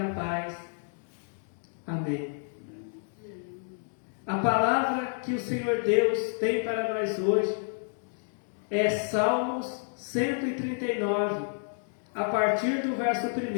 paz. Amém. A palavra que o Senhor Deus tem para nós hoje é Salmos 139, a partir do verso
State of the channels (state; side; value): silent; right; digital silence